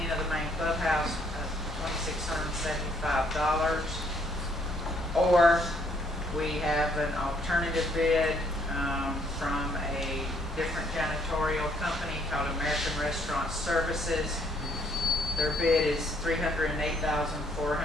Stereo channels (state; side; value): normal; both; correlation 0.67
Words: of the main clubhouse of $2,675. Or we have an alternative bid from a different janitorial company called American Restaurant Services. Their bid is